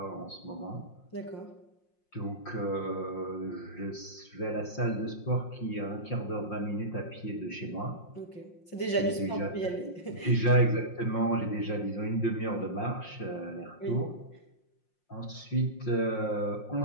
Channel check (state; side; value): late; right; 5.6 ms